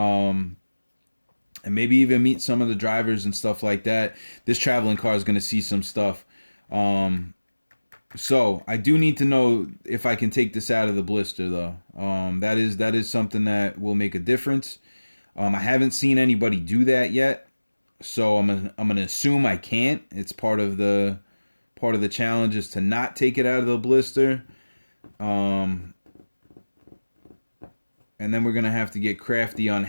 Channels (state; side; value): inverted; both; correlation -1.00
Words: And maybe even meet some of the drivers and stuff like that. This traveling car is going to see some stuff. So I do need to know if I can take this out of the blister, though. That is something that will make a difference. I haven't seen anybody do that yet, so I'm gonna assume I can't. It's part of the challenge is to not take it out of the blister. And then we're going to have to get crafty on